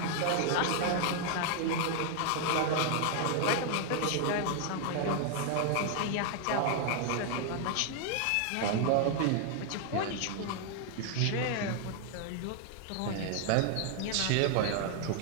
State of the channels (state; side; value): different; both; correlation 0.00